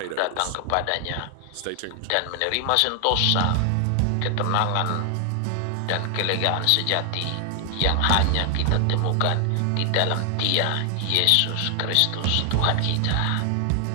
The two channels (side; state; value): both; different; correlation 0.00